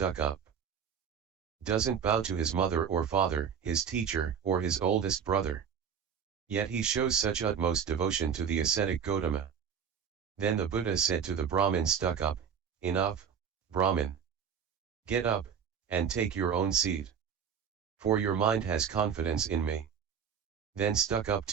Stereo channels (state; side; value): quieter; left; 7.5 dB